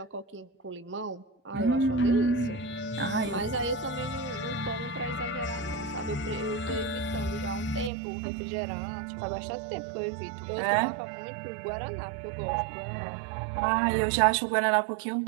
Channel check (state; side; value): drops out; left; at 7.9 s